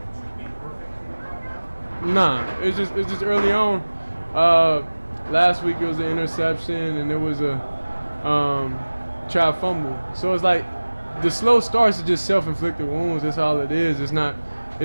to be perfect? Nah, it's just early on. Last week it was an interception and there was a trap fumble. So it's like the slow starts are just self-inflicted wounds. That's all it is. It's not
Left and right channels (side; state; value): both; inverted; correlation -1.00